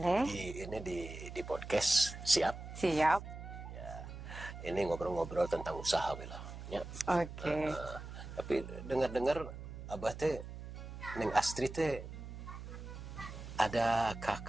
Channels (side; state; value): right; noise; hum, 10 dB below the sound